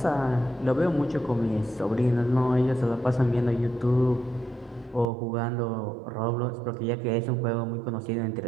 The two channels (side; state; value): left; drops out; at 5.1 s